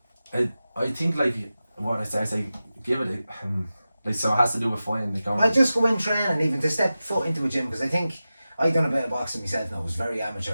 I think like what I say, give it like so it has to do with fighting. Like I just go in training, even to step foot into a gym, because I think I done a bit of boxing myself now. I was very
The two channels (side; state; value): both; inverted; correlation -0.94